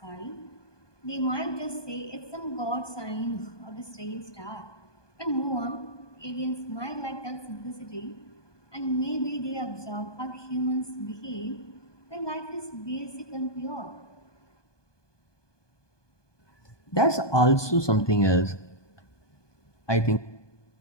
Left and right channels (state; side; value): late; right; 1.2 ms